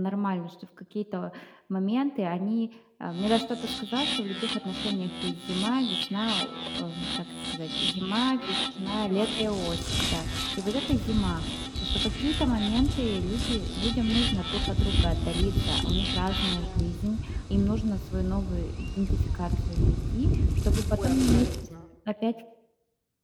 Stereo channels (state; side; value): identical; both; correlation 1.00